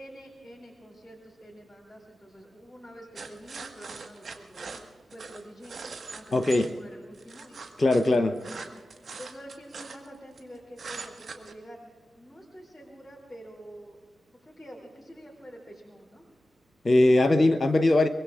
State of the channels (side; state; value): both; normal; correlation 0.95